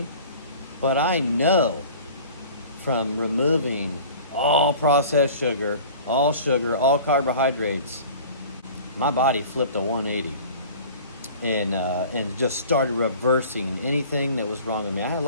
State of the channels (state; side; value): inverted; both; correlation -0.43